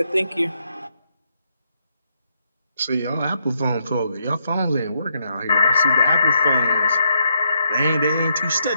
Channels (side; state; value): both; inverted; correlation -0.78